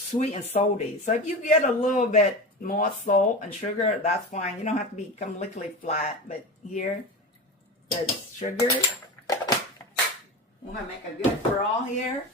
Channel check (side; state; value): both; normal; correlation 0.26